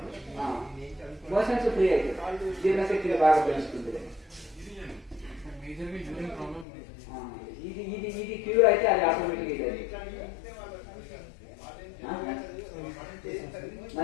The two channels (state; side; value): drops out; right; at 6.7 s